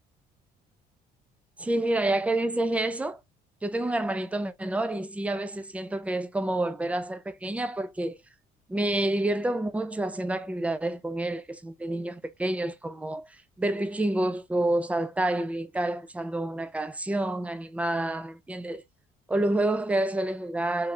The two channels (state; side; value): normal; both; correlation 0.88